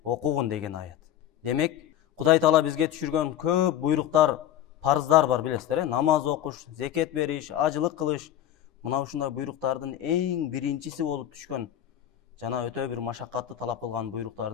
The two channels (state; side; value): quieter; right; 11.4 dB